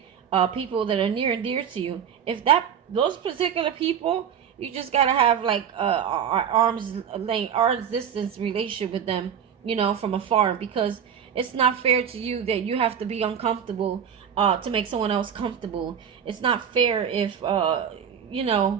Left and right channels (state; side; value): quieter; left; 8.2 dB